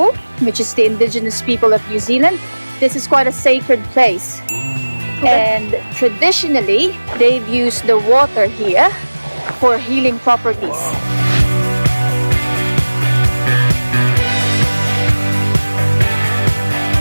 which is the indigenous people of New Zealand, this is quite a sacred place. And traditionally, they've used the water here for healing properties.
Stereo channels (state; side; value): inverted; both; correlation -1.00